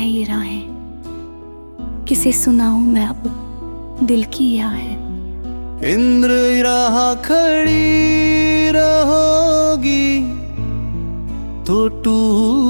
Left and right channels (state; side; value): inverted; both; correlation -1.00